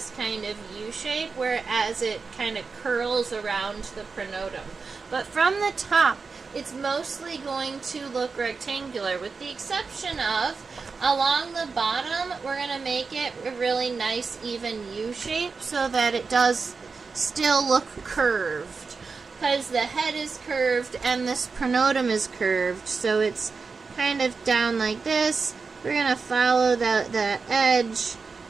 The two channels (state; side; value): quieter; left; 4.7 dB